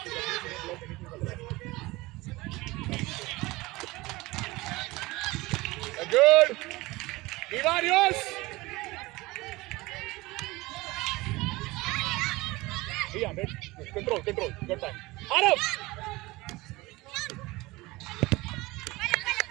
good. Ivan, yours. Yeah, control. Good time. Arav.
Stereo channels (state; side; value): quieter; left; 21.1 dB